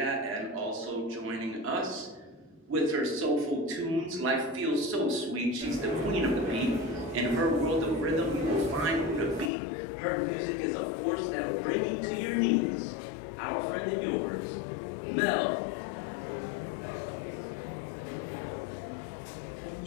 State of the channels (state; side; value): drops out; right; at 9.5 s